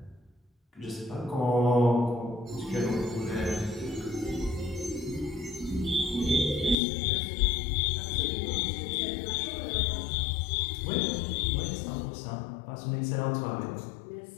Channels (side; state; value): right; drops out; at 6.8 s